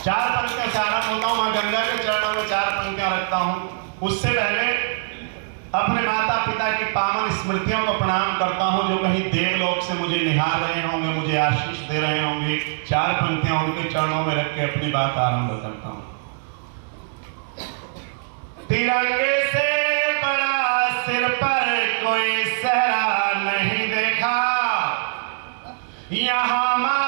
पंक्तियां से आरंभ होता हूँ, माँ गंगा के चरणों में 4 पंक्तियां रखता हूँ। उससे पहले अपने माता पिता की पावन स्मृतियों को प्रणाम करता हूँ, जो कहीं देवलोक से मुझे निहार रहे होंगे, मुझे आशीष दे रहे होंगे। 4 पंक्तियां उनके चरणों में रख के अपनी बात आरंभ करता हूँ। तिरंगे से बड़ा सिर पर कोई सहरा नहीं देखा, यहाँ माँ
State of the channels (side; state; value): left; silent; digital silence